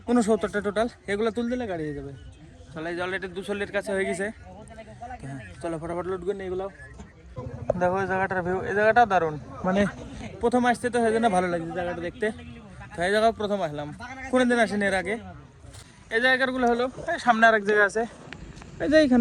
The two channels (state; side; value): identical; both; correlation 1.00